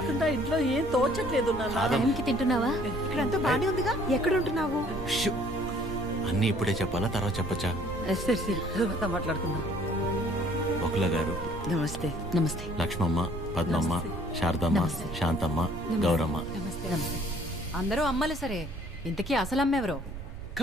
ఇంట్లో ఏం తోచట్లేదు. టైంకి తింటున్నావా? ఇక్కడంతా బానే ఉందిగా. ఎక్కడ ఉంటున్నావు? అన్నీ ఇప్పుడే చెప్పాలా, తర్వాత చెప్పచ్చా? సరే సరే, తర్వాత మాట్లాడుకుందాం. బకుల గారు నమస్తే. నమస్తే. లక్ష్మమ్మ, పద్మమ్మ, శారదమ్మ, శాంతమ్మ, గౌరమ్మ. అందరూ అమ్మలు సరే, ఇంతకీ అసలు అమ్మెవరో?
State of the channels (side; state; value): right; noise; rumble, 10 dB below the sound